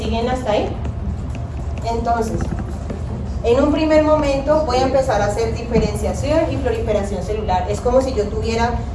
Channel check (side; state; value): both; identical; correlation 1.00